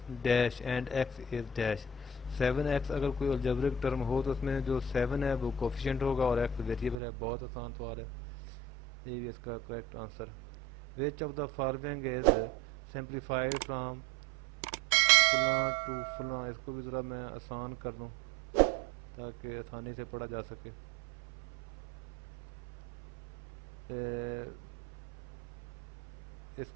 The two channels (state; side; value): drops out; left; at 7.0 s